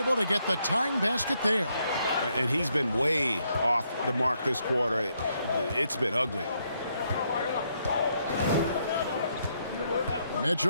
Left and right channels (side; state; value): both; inverted; correlation -0.76